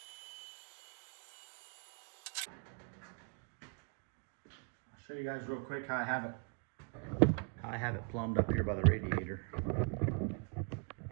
Show you guys real quick how I have it plumbed up here by the radiator.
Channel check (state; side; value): quieter; left; 37.7 dB